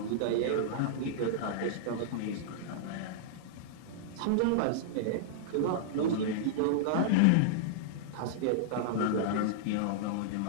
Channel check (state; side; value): different; both; correlation -0.02